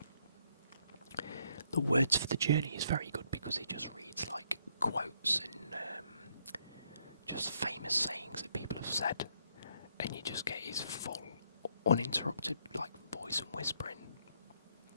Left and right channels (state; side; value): inverted; both; correlation -0.72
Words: The words for the journey is very good because it just reads like quotes and just famous sayings that people have said, and you just get his full, uninterrupted like voice and whispering